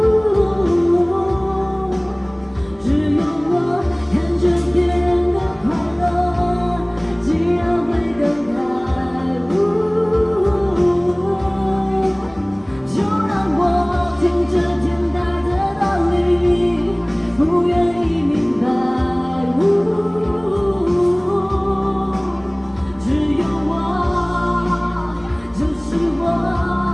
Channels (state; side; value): noise; left; rumble, 28 dB below the sound